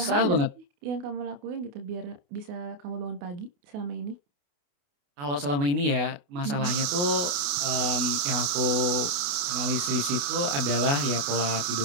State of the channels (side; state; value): left; late; 28 ms